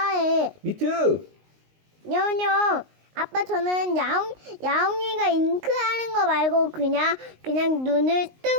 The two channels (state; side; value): late; left; 19 ms